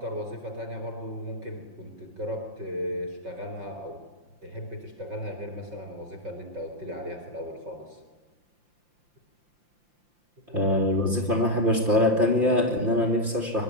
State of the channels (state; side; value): late; left; 5.8 ms